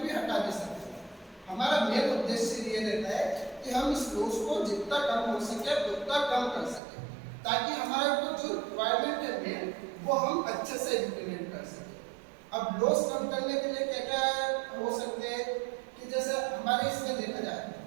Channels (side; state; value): left; drops out; at 6.8 s